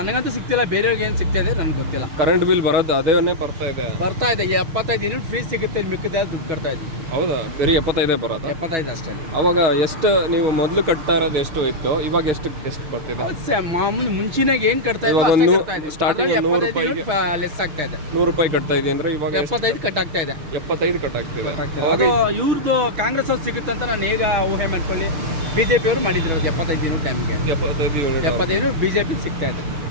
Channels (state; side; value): late; left; 6.6 ms